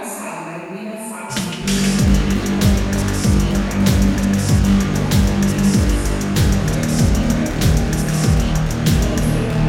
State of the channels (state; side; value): identical; both; correlation 1.00